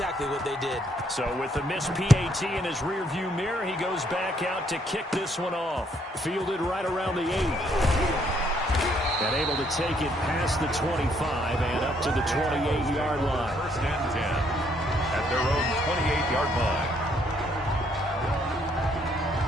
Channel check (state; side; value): normal; both; correlation 0.69